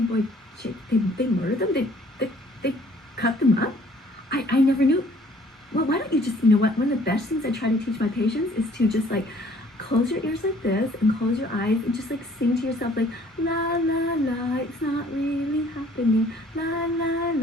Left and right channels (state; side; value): normal; both; correlation 0.57